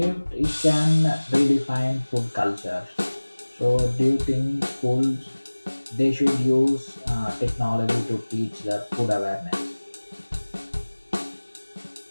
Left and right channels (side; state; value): both; inverted; correlation -1.00